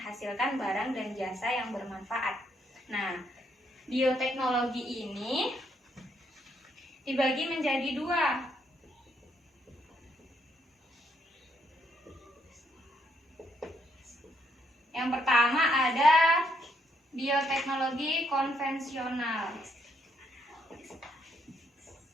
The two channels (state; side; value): normal; both; correlation 0.74